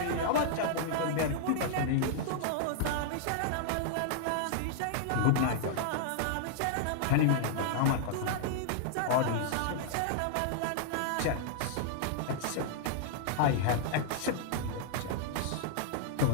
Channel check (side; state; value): both; different; correlation -0.01